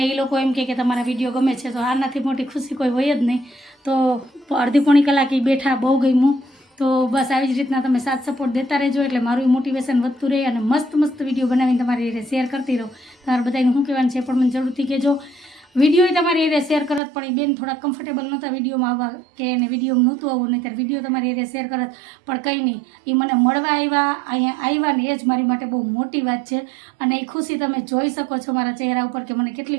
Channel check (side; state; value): left; drops out; at 17.0 s